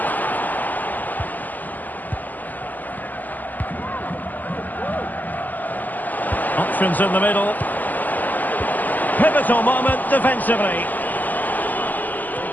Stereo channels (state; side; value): late; right; 0.083 ms